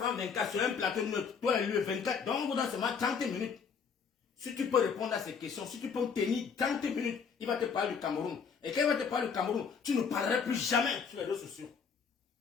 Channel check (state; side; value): quieter; right; 6.1 dB